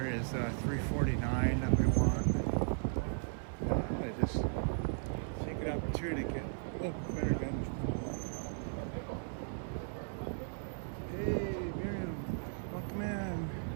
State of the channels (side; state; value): left; silent; 53 dB below the other